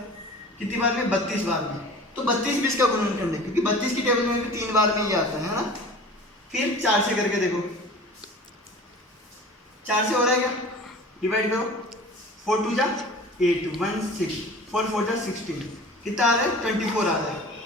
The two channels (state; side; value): normal; both; correlation 0.41